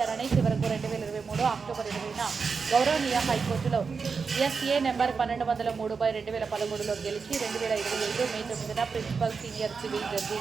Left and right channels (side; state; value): left; quieter; 5.2 dB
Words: చివరకు 2023 అక్టోబర్ 20న గౌరవనీయ హైకోర్టులో ఎస్ఏ నెంబర్ 1203/2013లో గెలిచి 2025 మే 9న ప్రిన్సిపల్ సీనియర్ సివిల్ జడ్జి